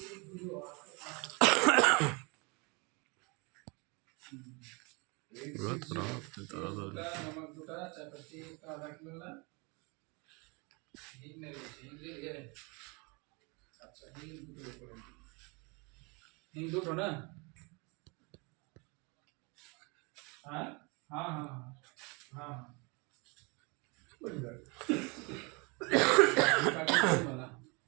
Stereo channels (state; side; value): quieter; left; 29.5 dB